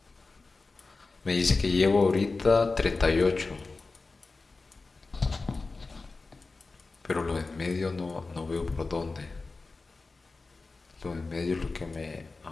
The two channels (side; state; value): right; quieter; 3.8 dB